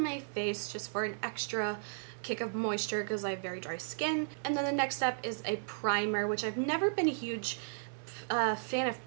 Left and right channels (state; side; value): silent; left; digital silence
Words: face just for an extra kick of moisture, because I have very dry skin. And then the next step is a primer, which I've never been a huge fan of